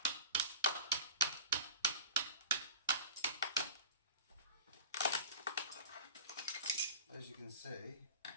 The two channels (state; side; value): inverted; both; correlation -0.34